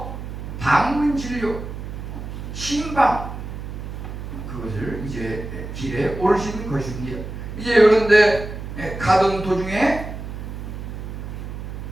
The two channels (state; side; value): noise; right; hum, 8 dB below the sound